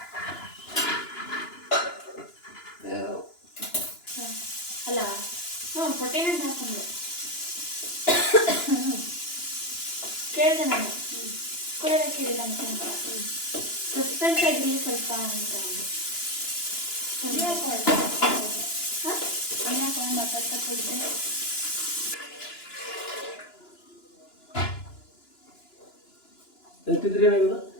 ಅಲ್ಲ ಕೊಟ್ಟೇನೆ ಅಂತ ಹಾಕೊಂಡೆ ಕೇಳಿದೆ ನಾನು. ಕೊಡೋದ ಕೇಳಿಲ್ಲ ಅಂತ ಸಸ್ಪೆನ್ಸ್ ಆಗಿರಲಿ ಸ್ವಲ್ಪ ಅಂತ ಅಂದು ಹಾಕೊಂಡು ಮಾತಾಡ್ತಾ ಹೋಗಿದ್ದೆ.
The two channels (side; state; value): right; late; 2.9 ms